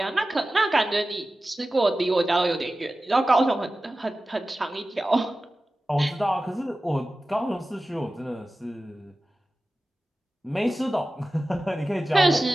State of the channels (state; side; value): normal; both; correlation 0.95